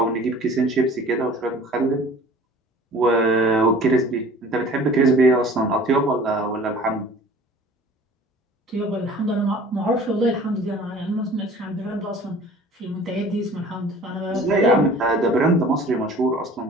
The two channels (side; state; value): both; normal; correlation 0.47